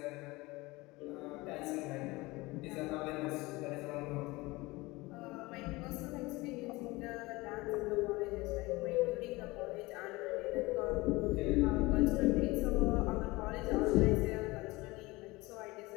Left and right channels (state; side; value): quieter; right; 21.9 dB